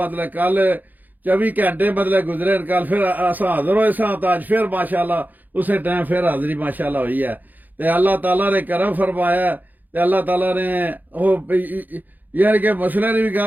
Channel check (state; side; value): late; left; 0.084 ms